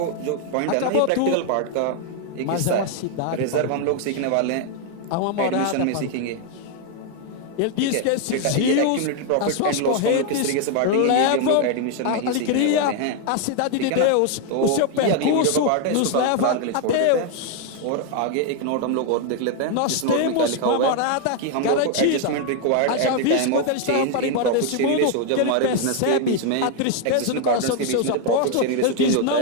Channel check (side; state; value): both; different; correlation 0.00